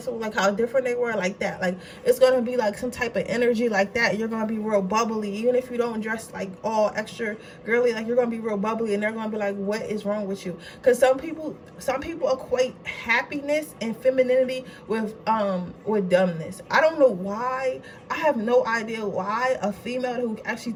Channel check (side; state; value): both; identical; correlation 1.00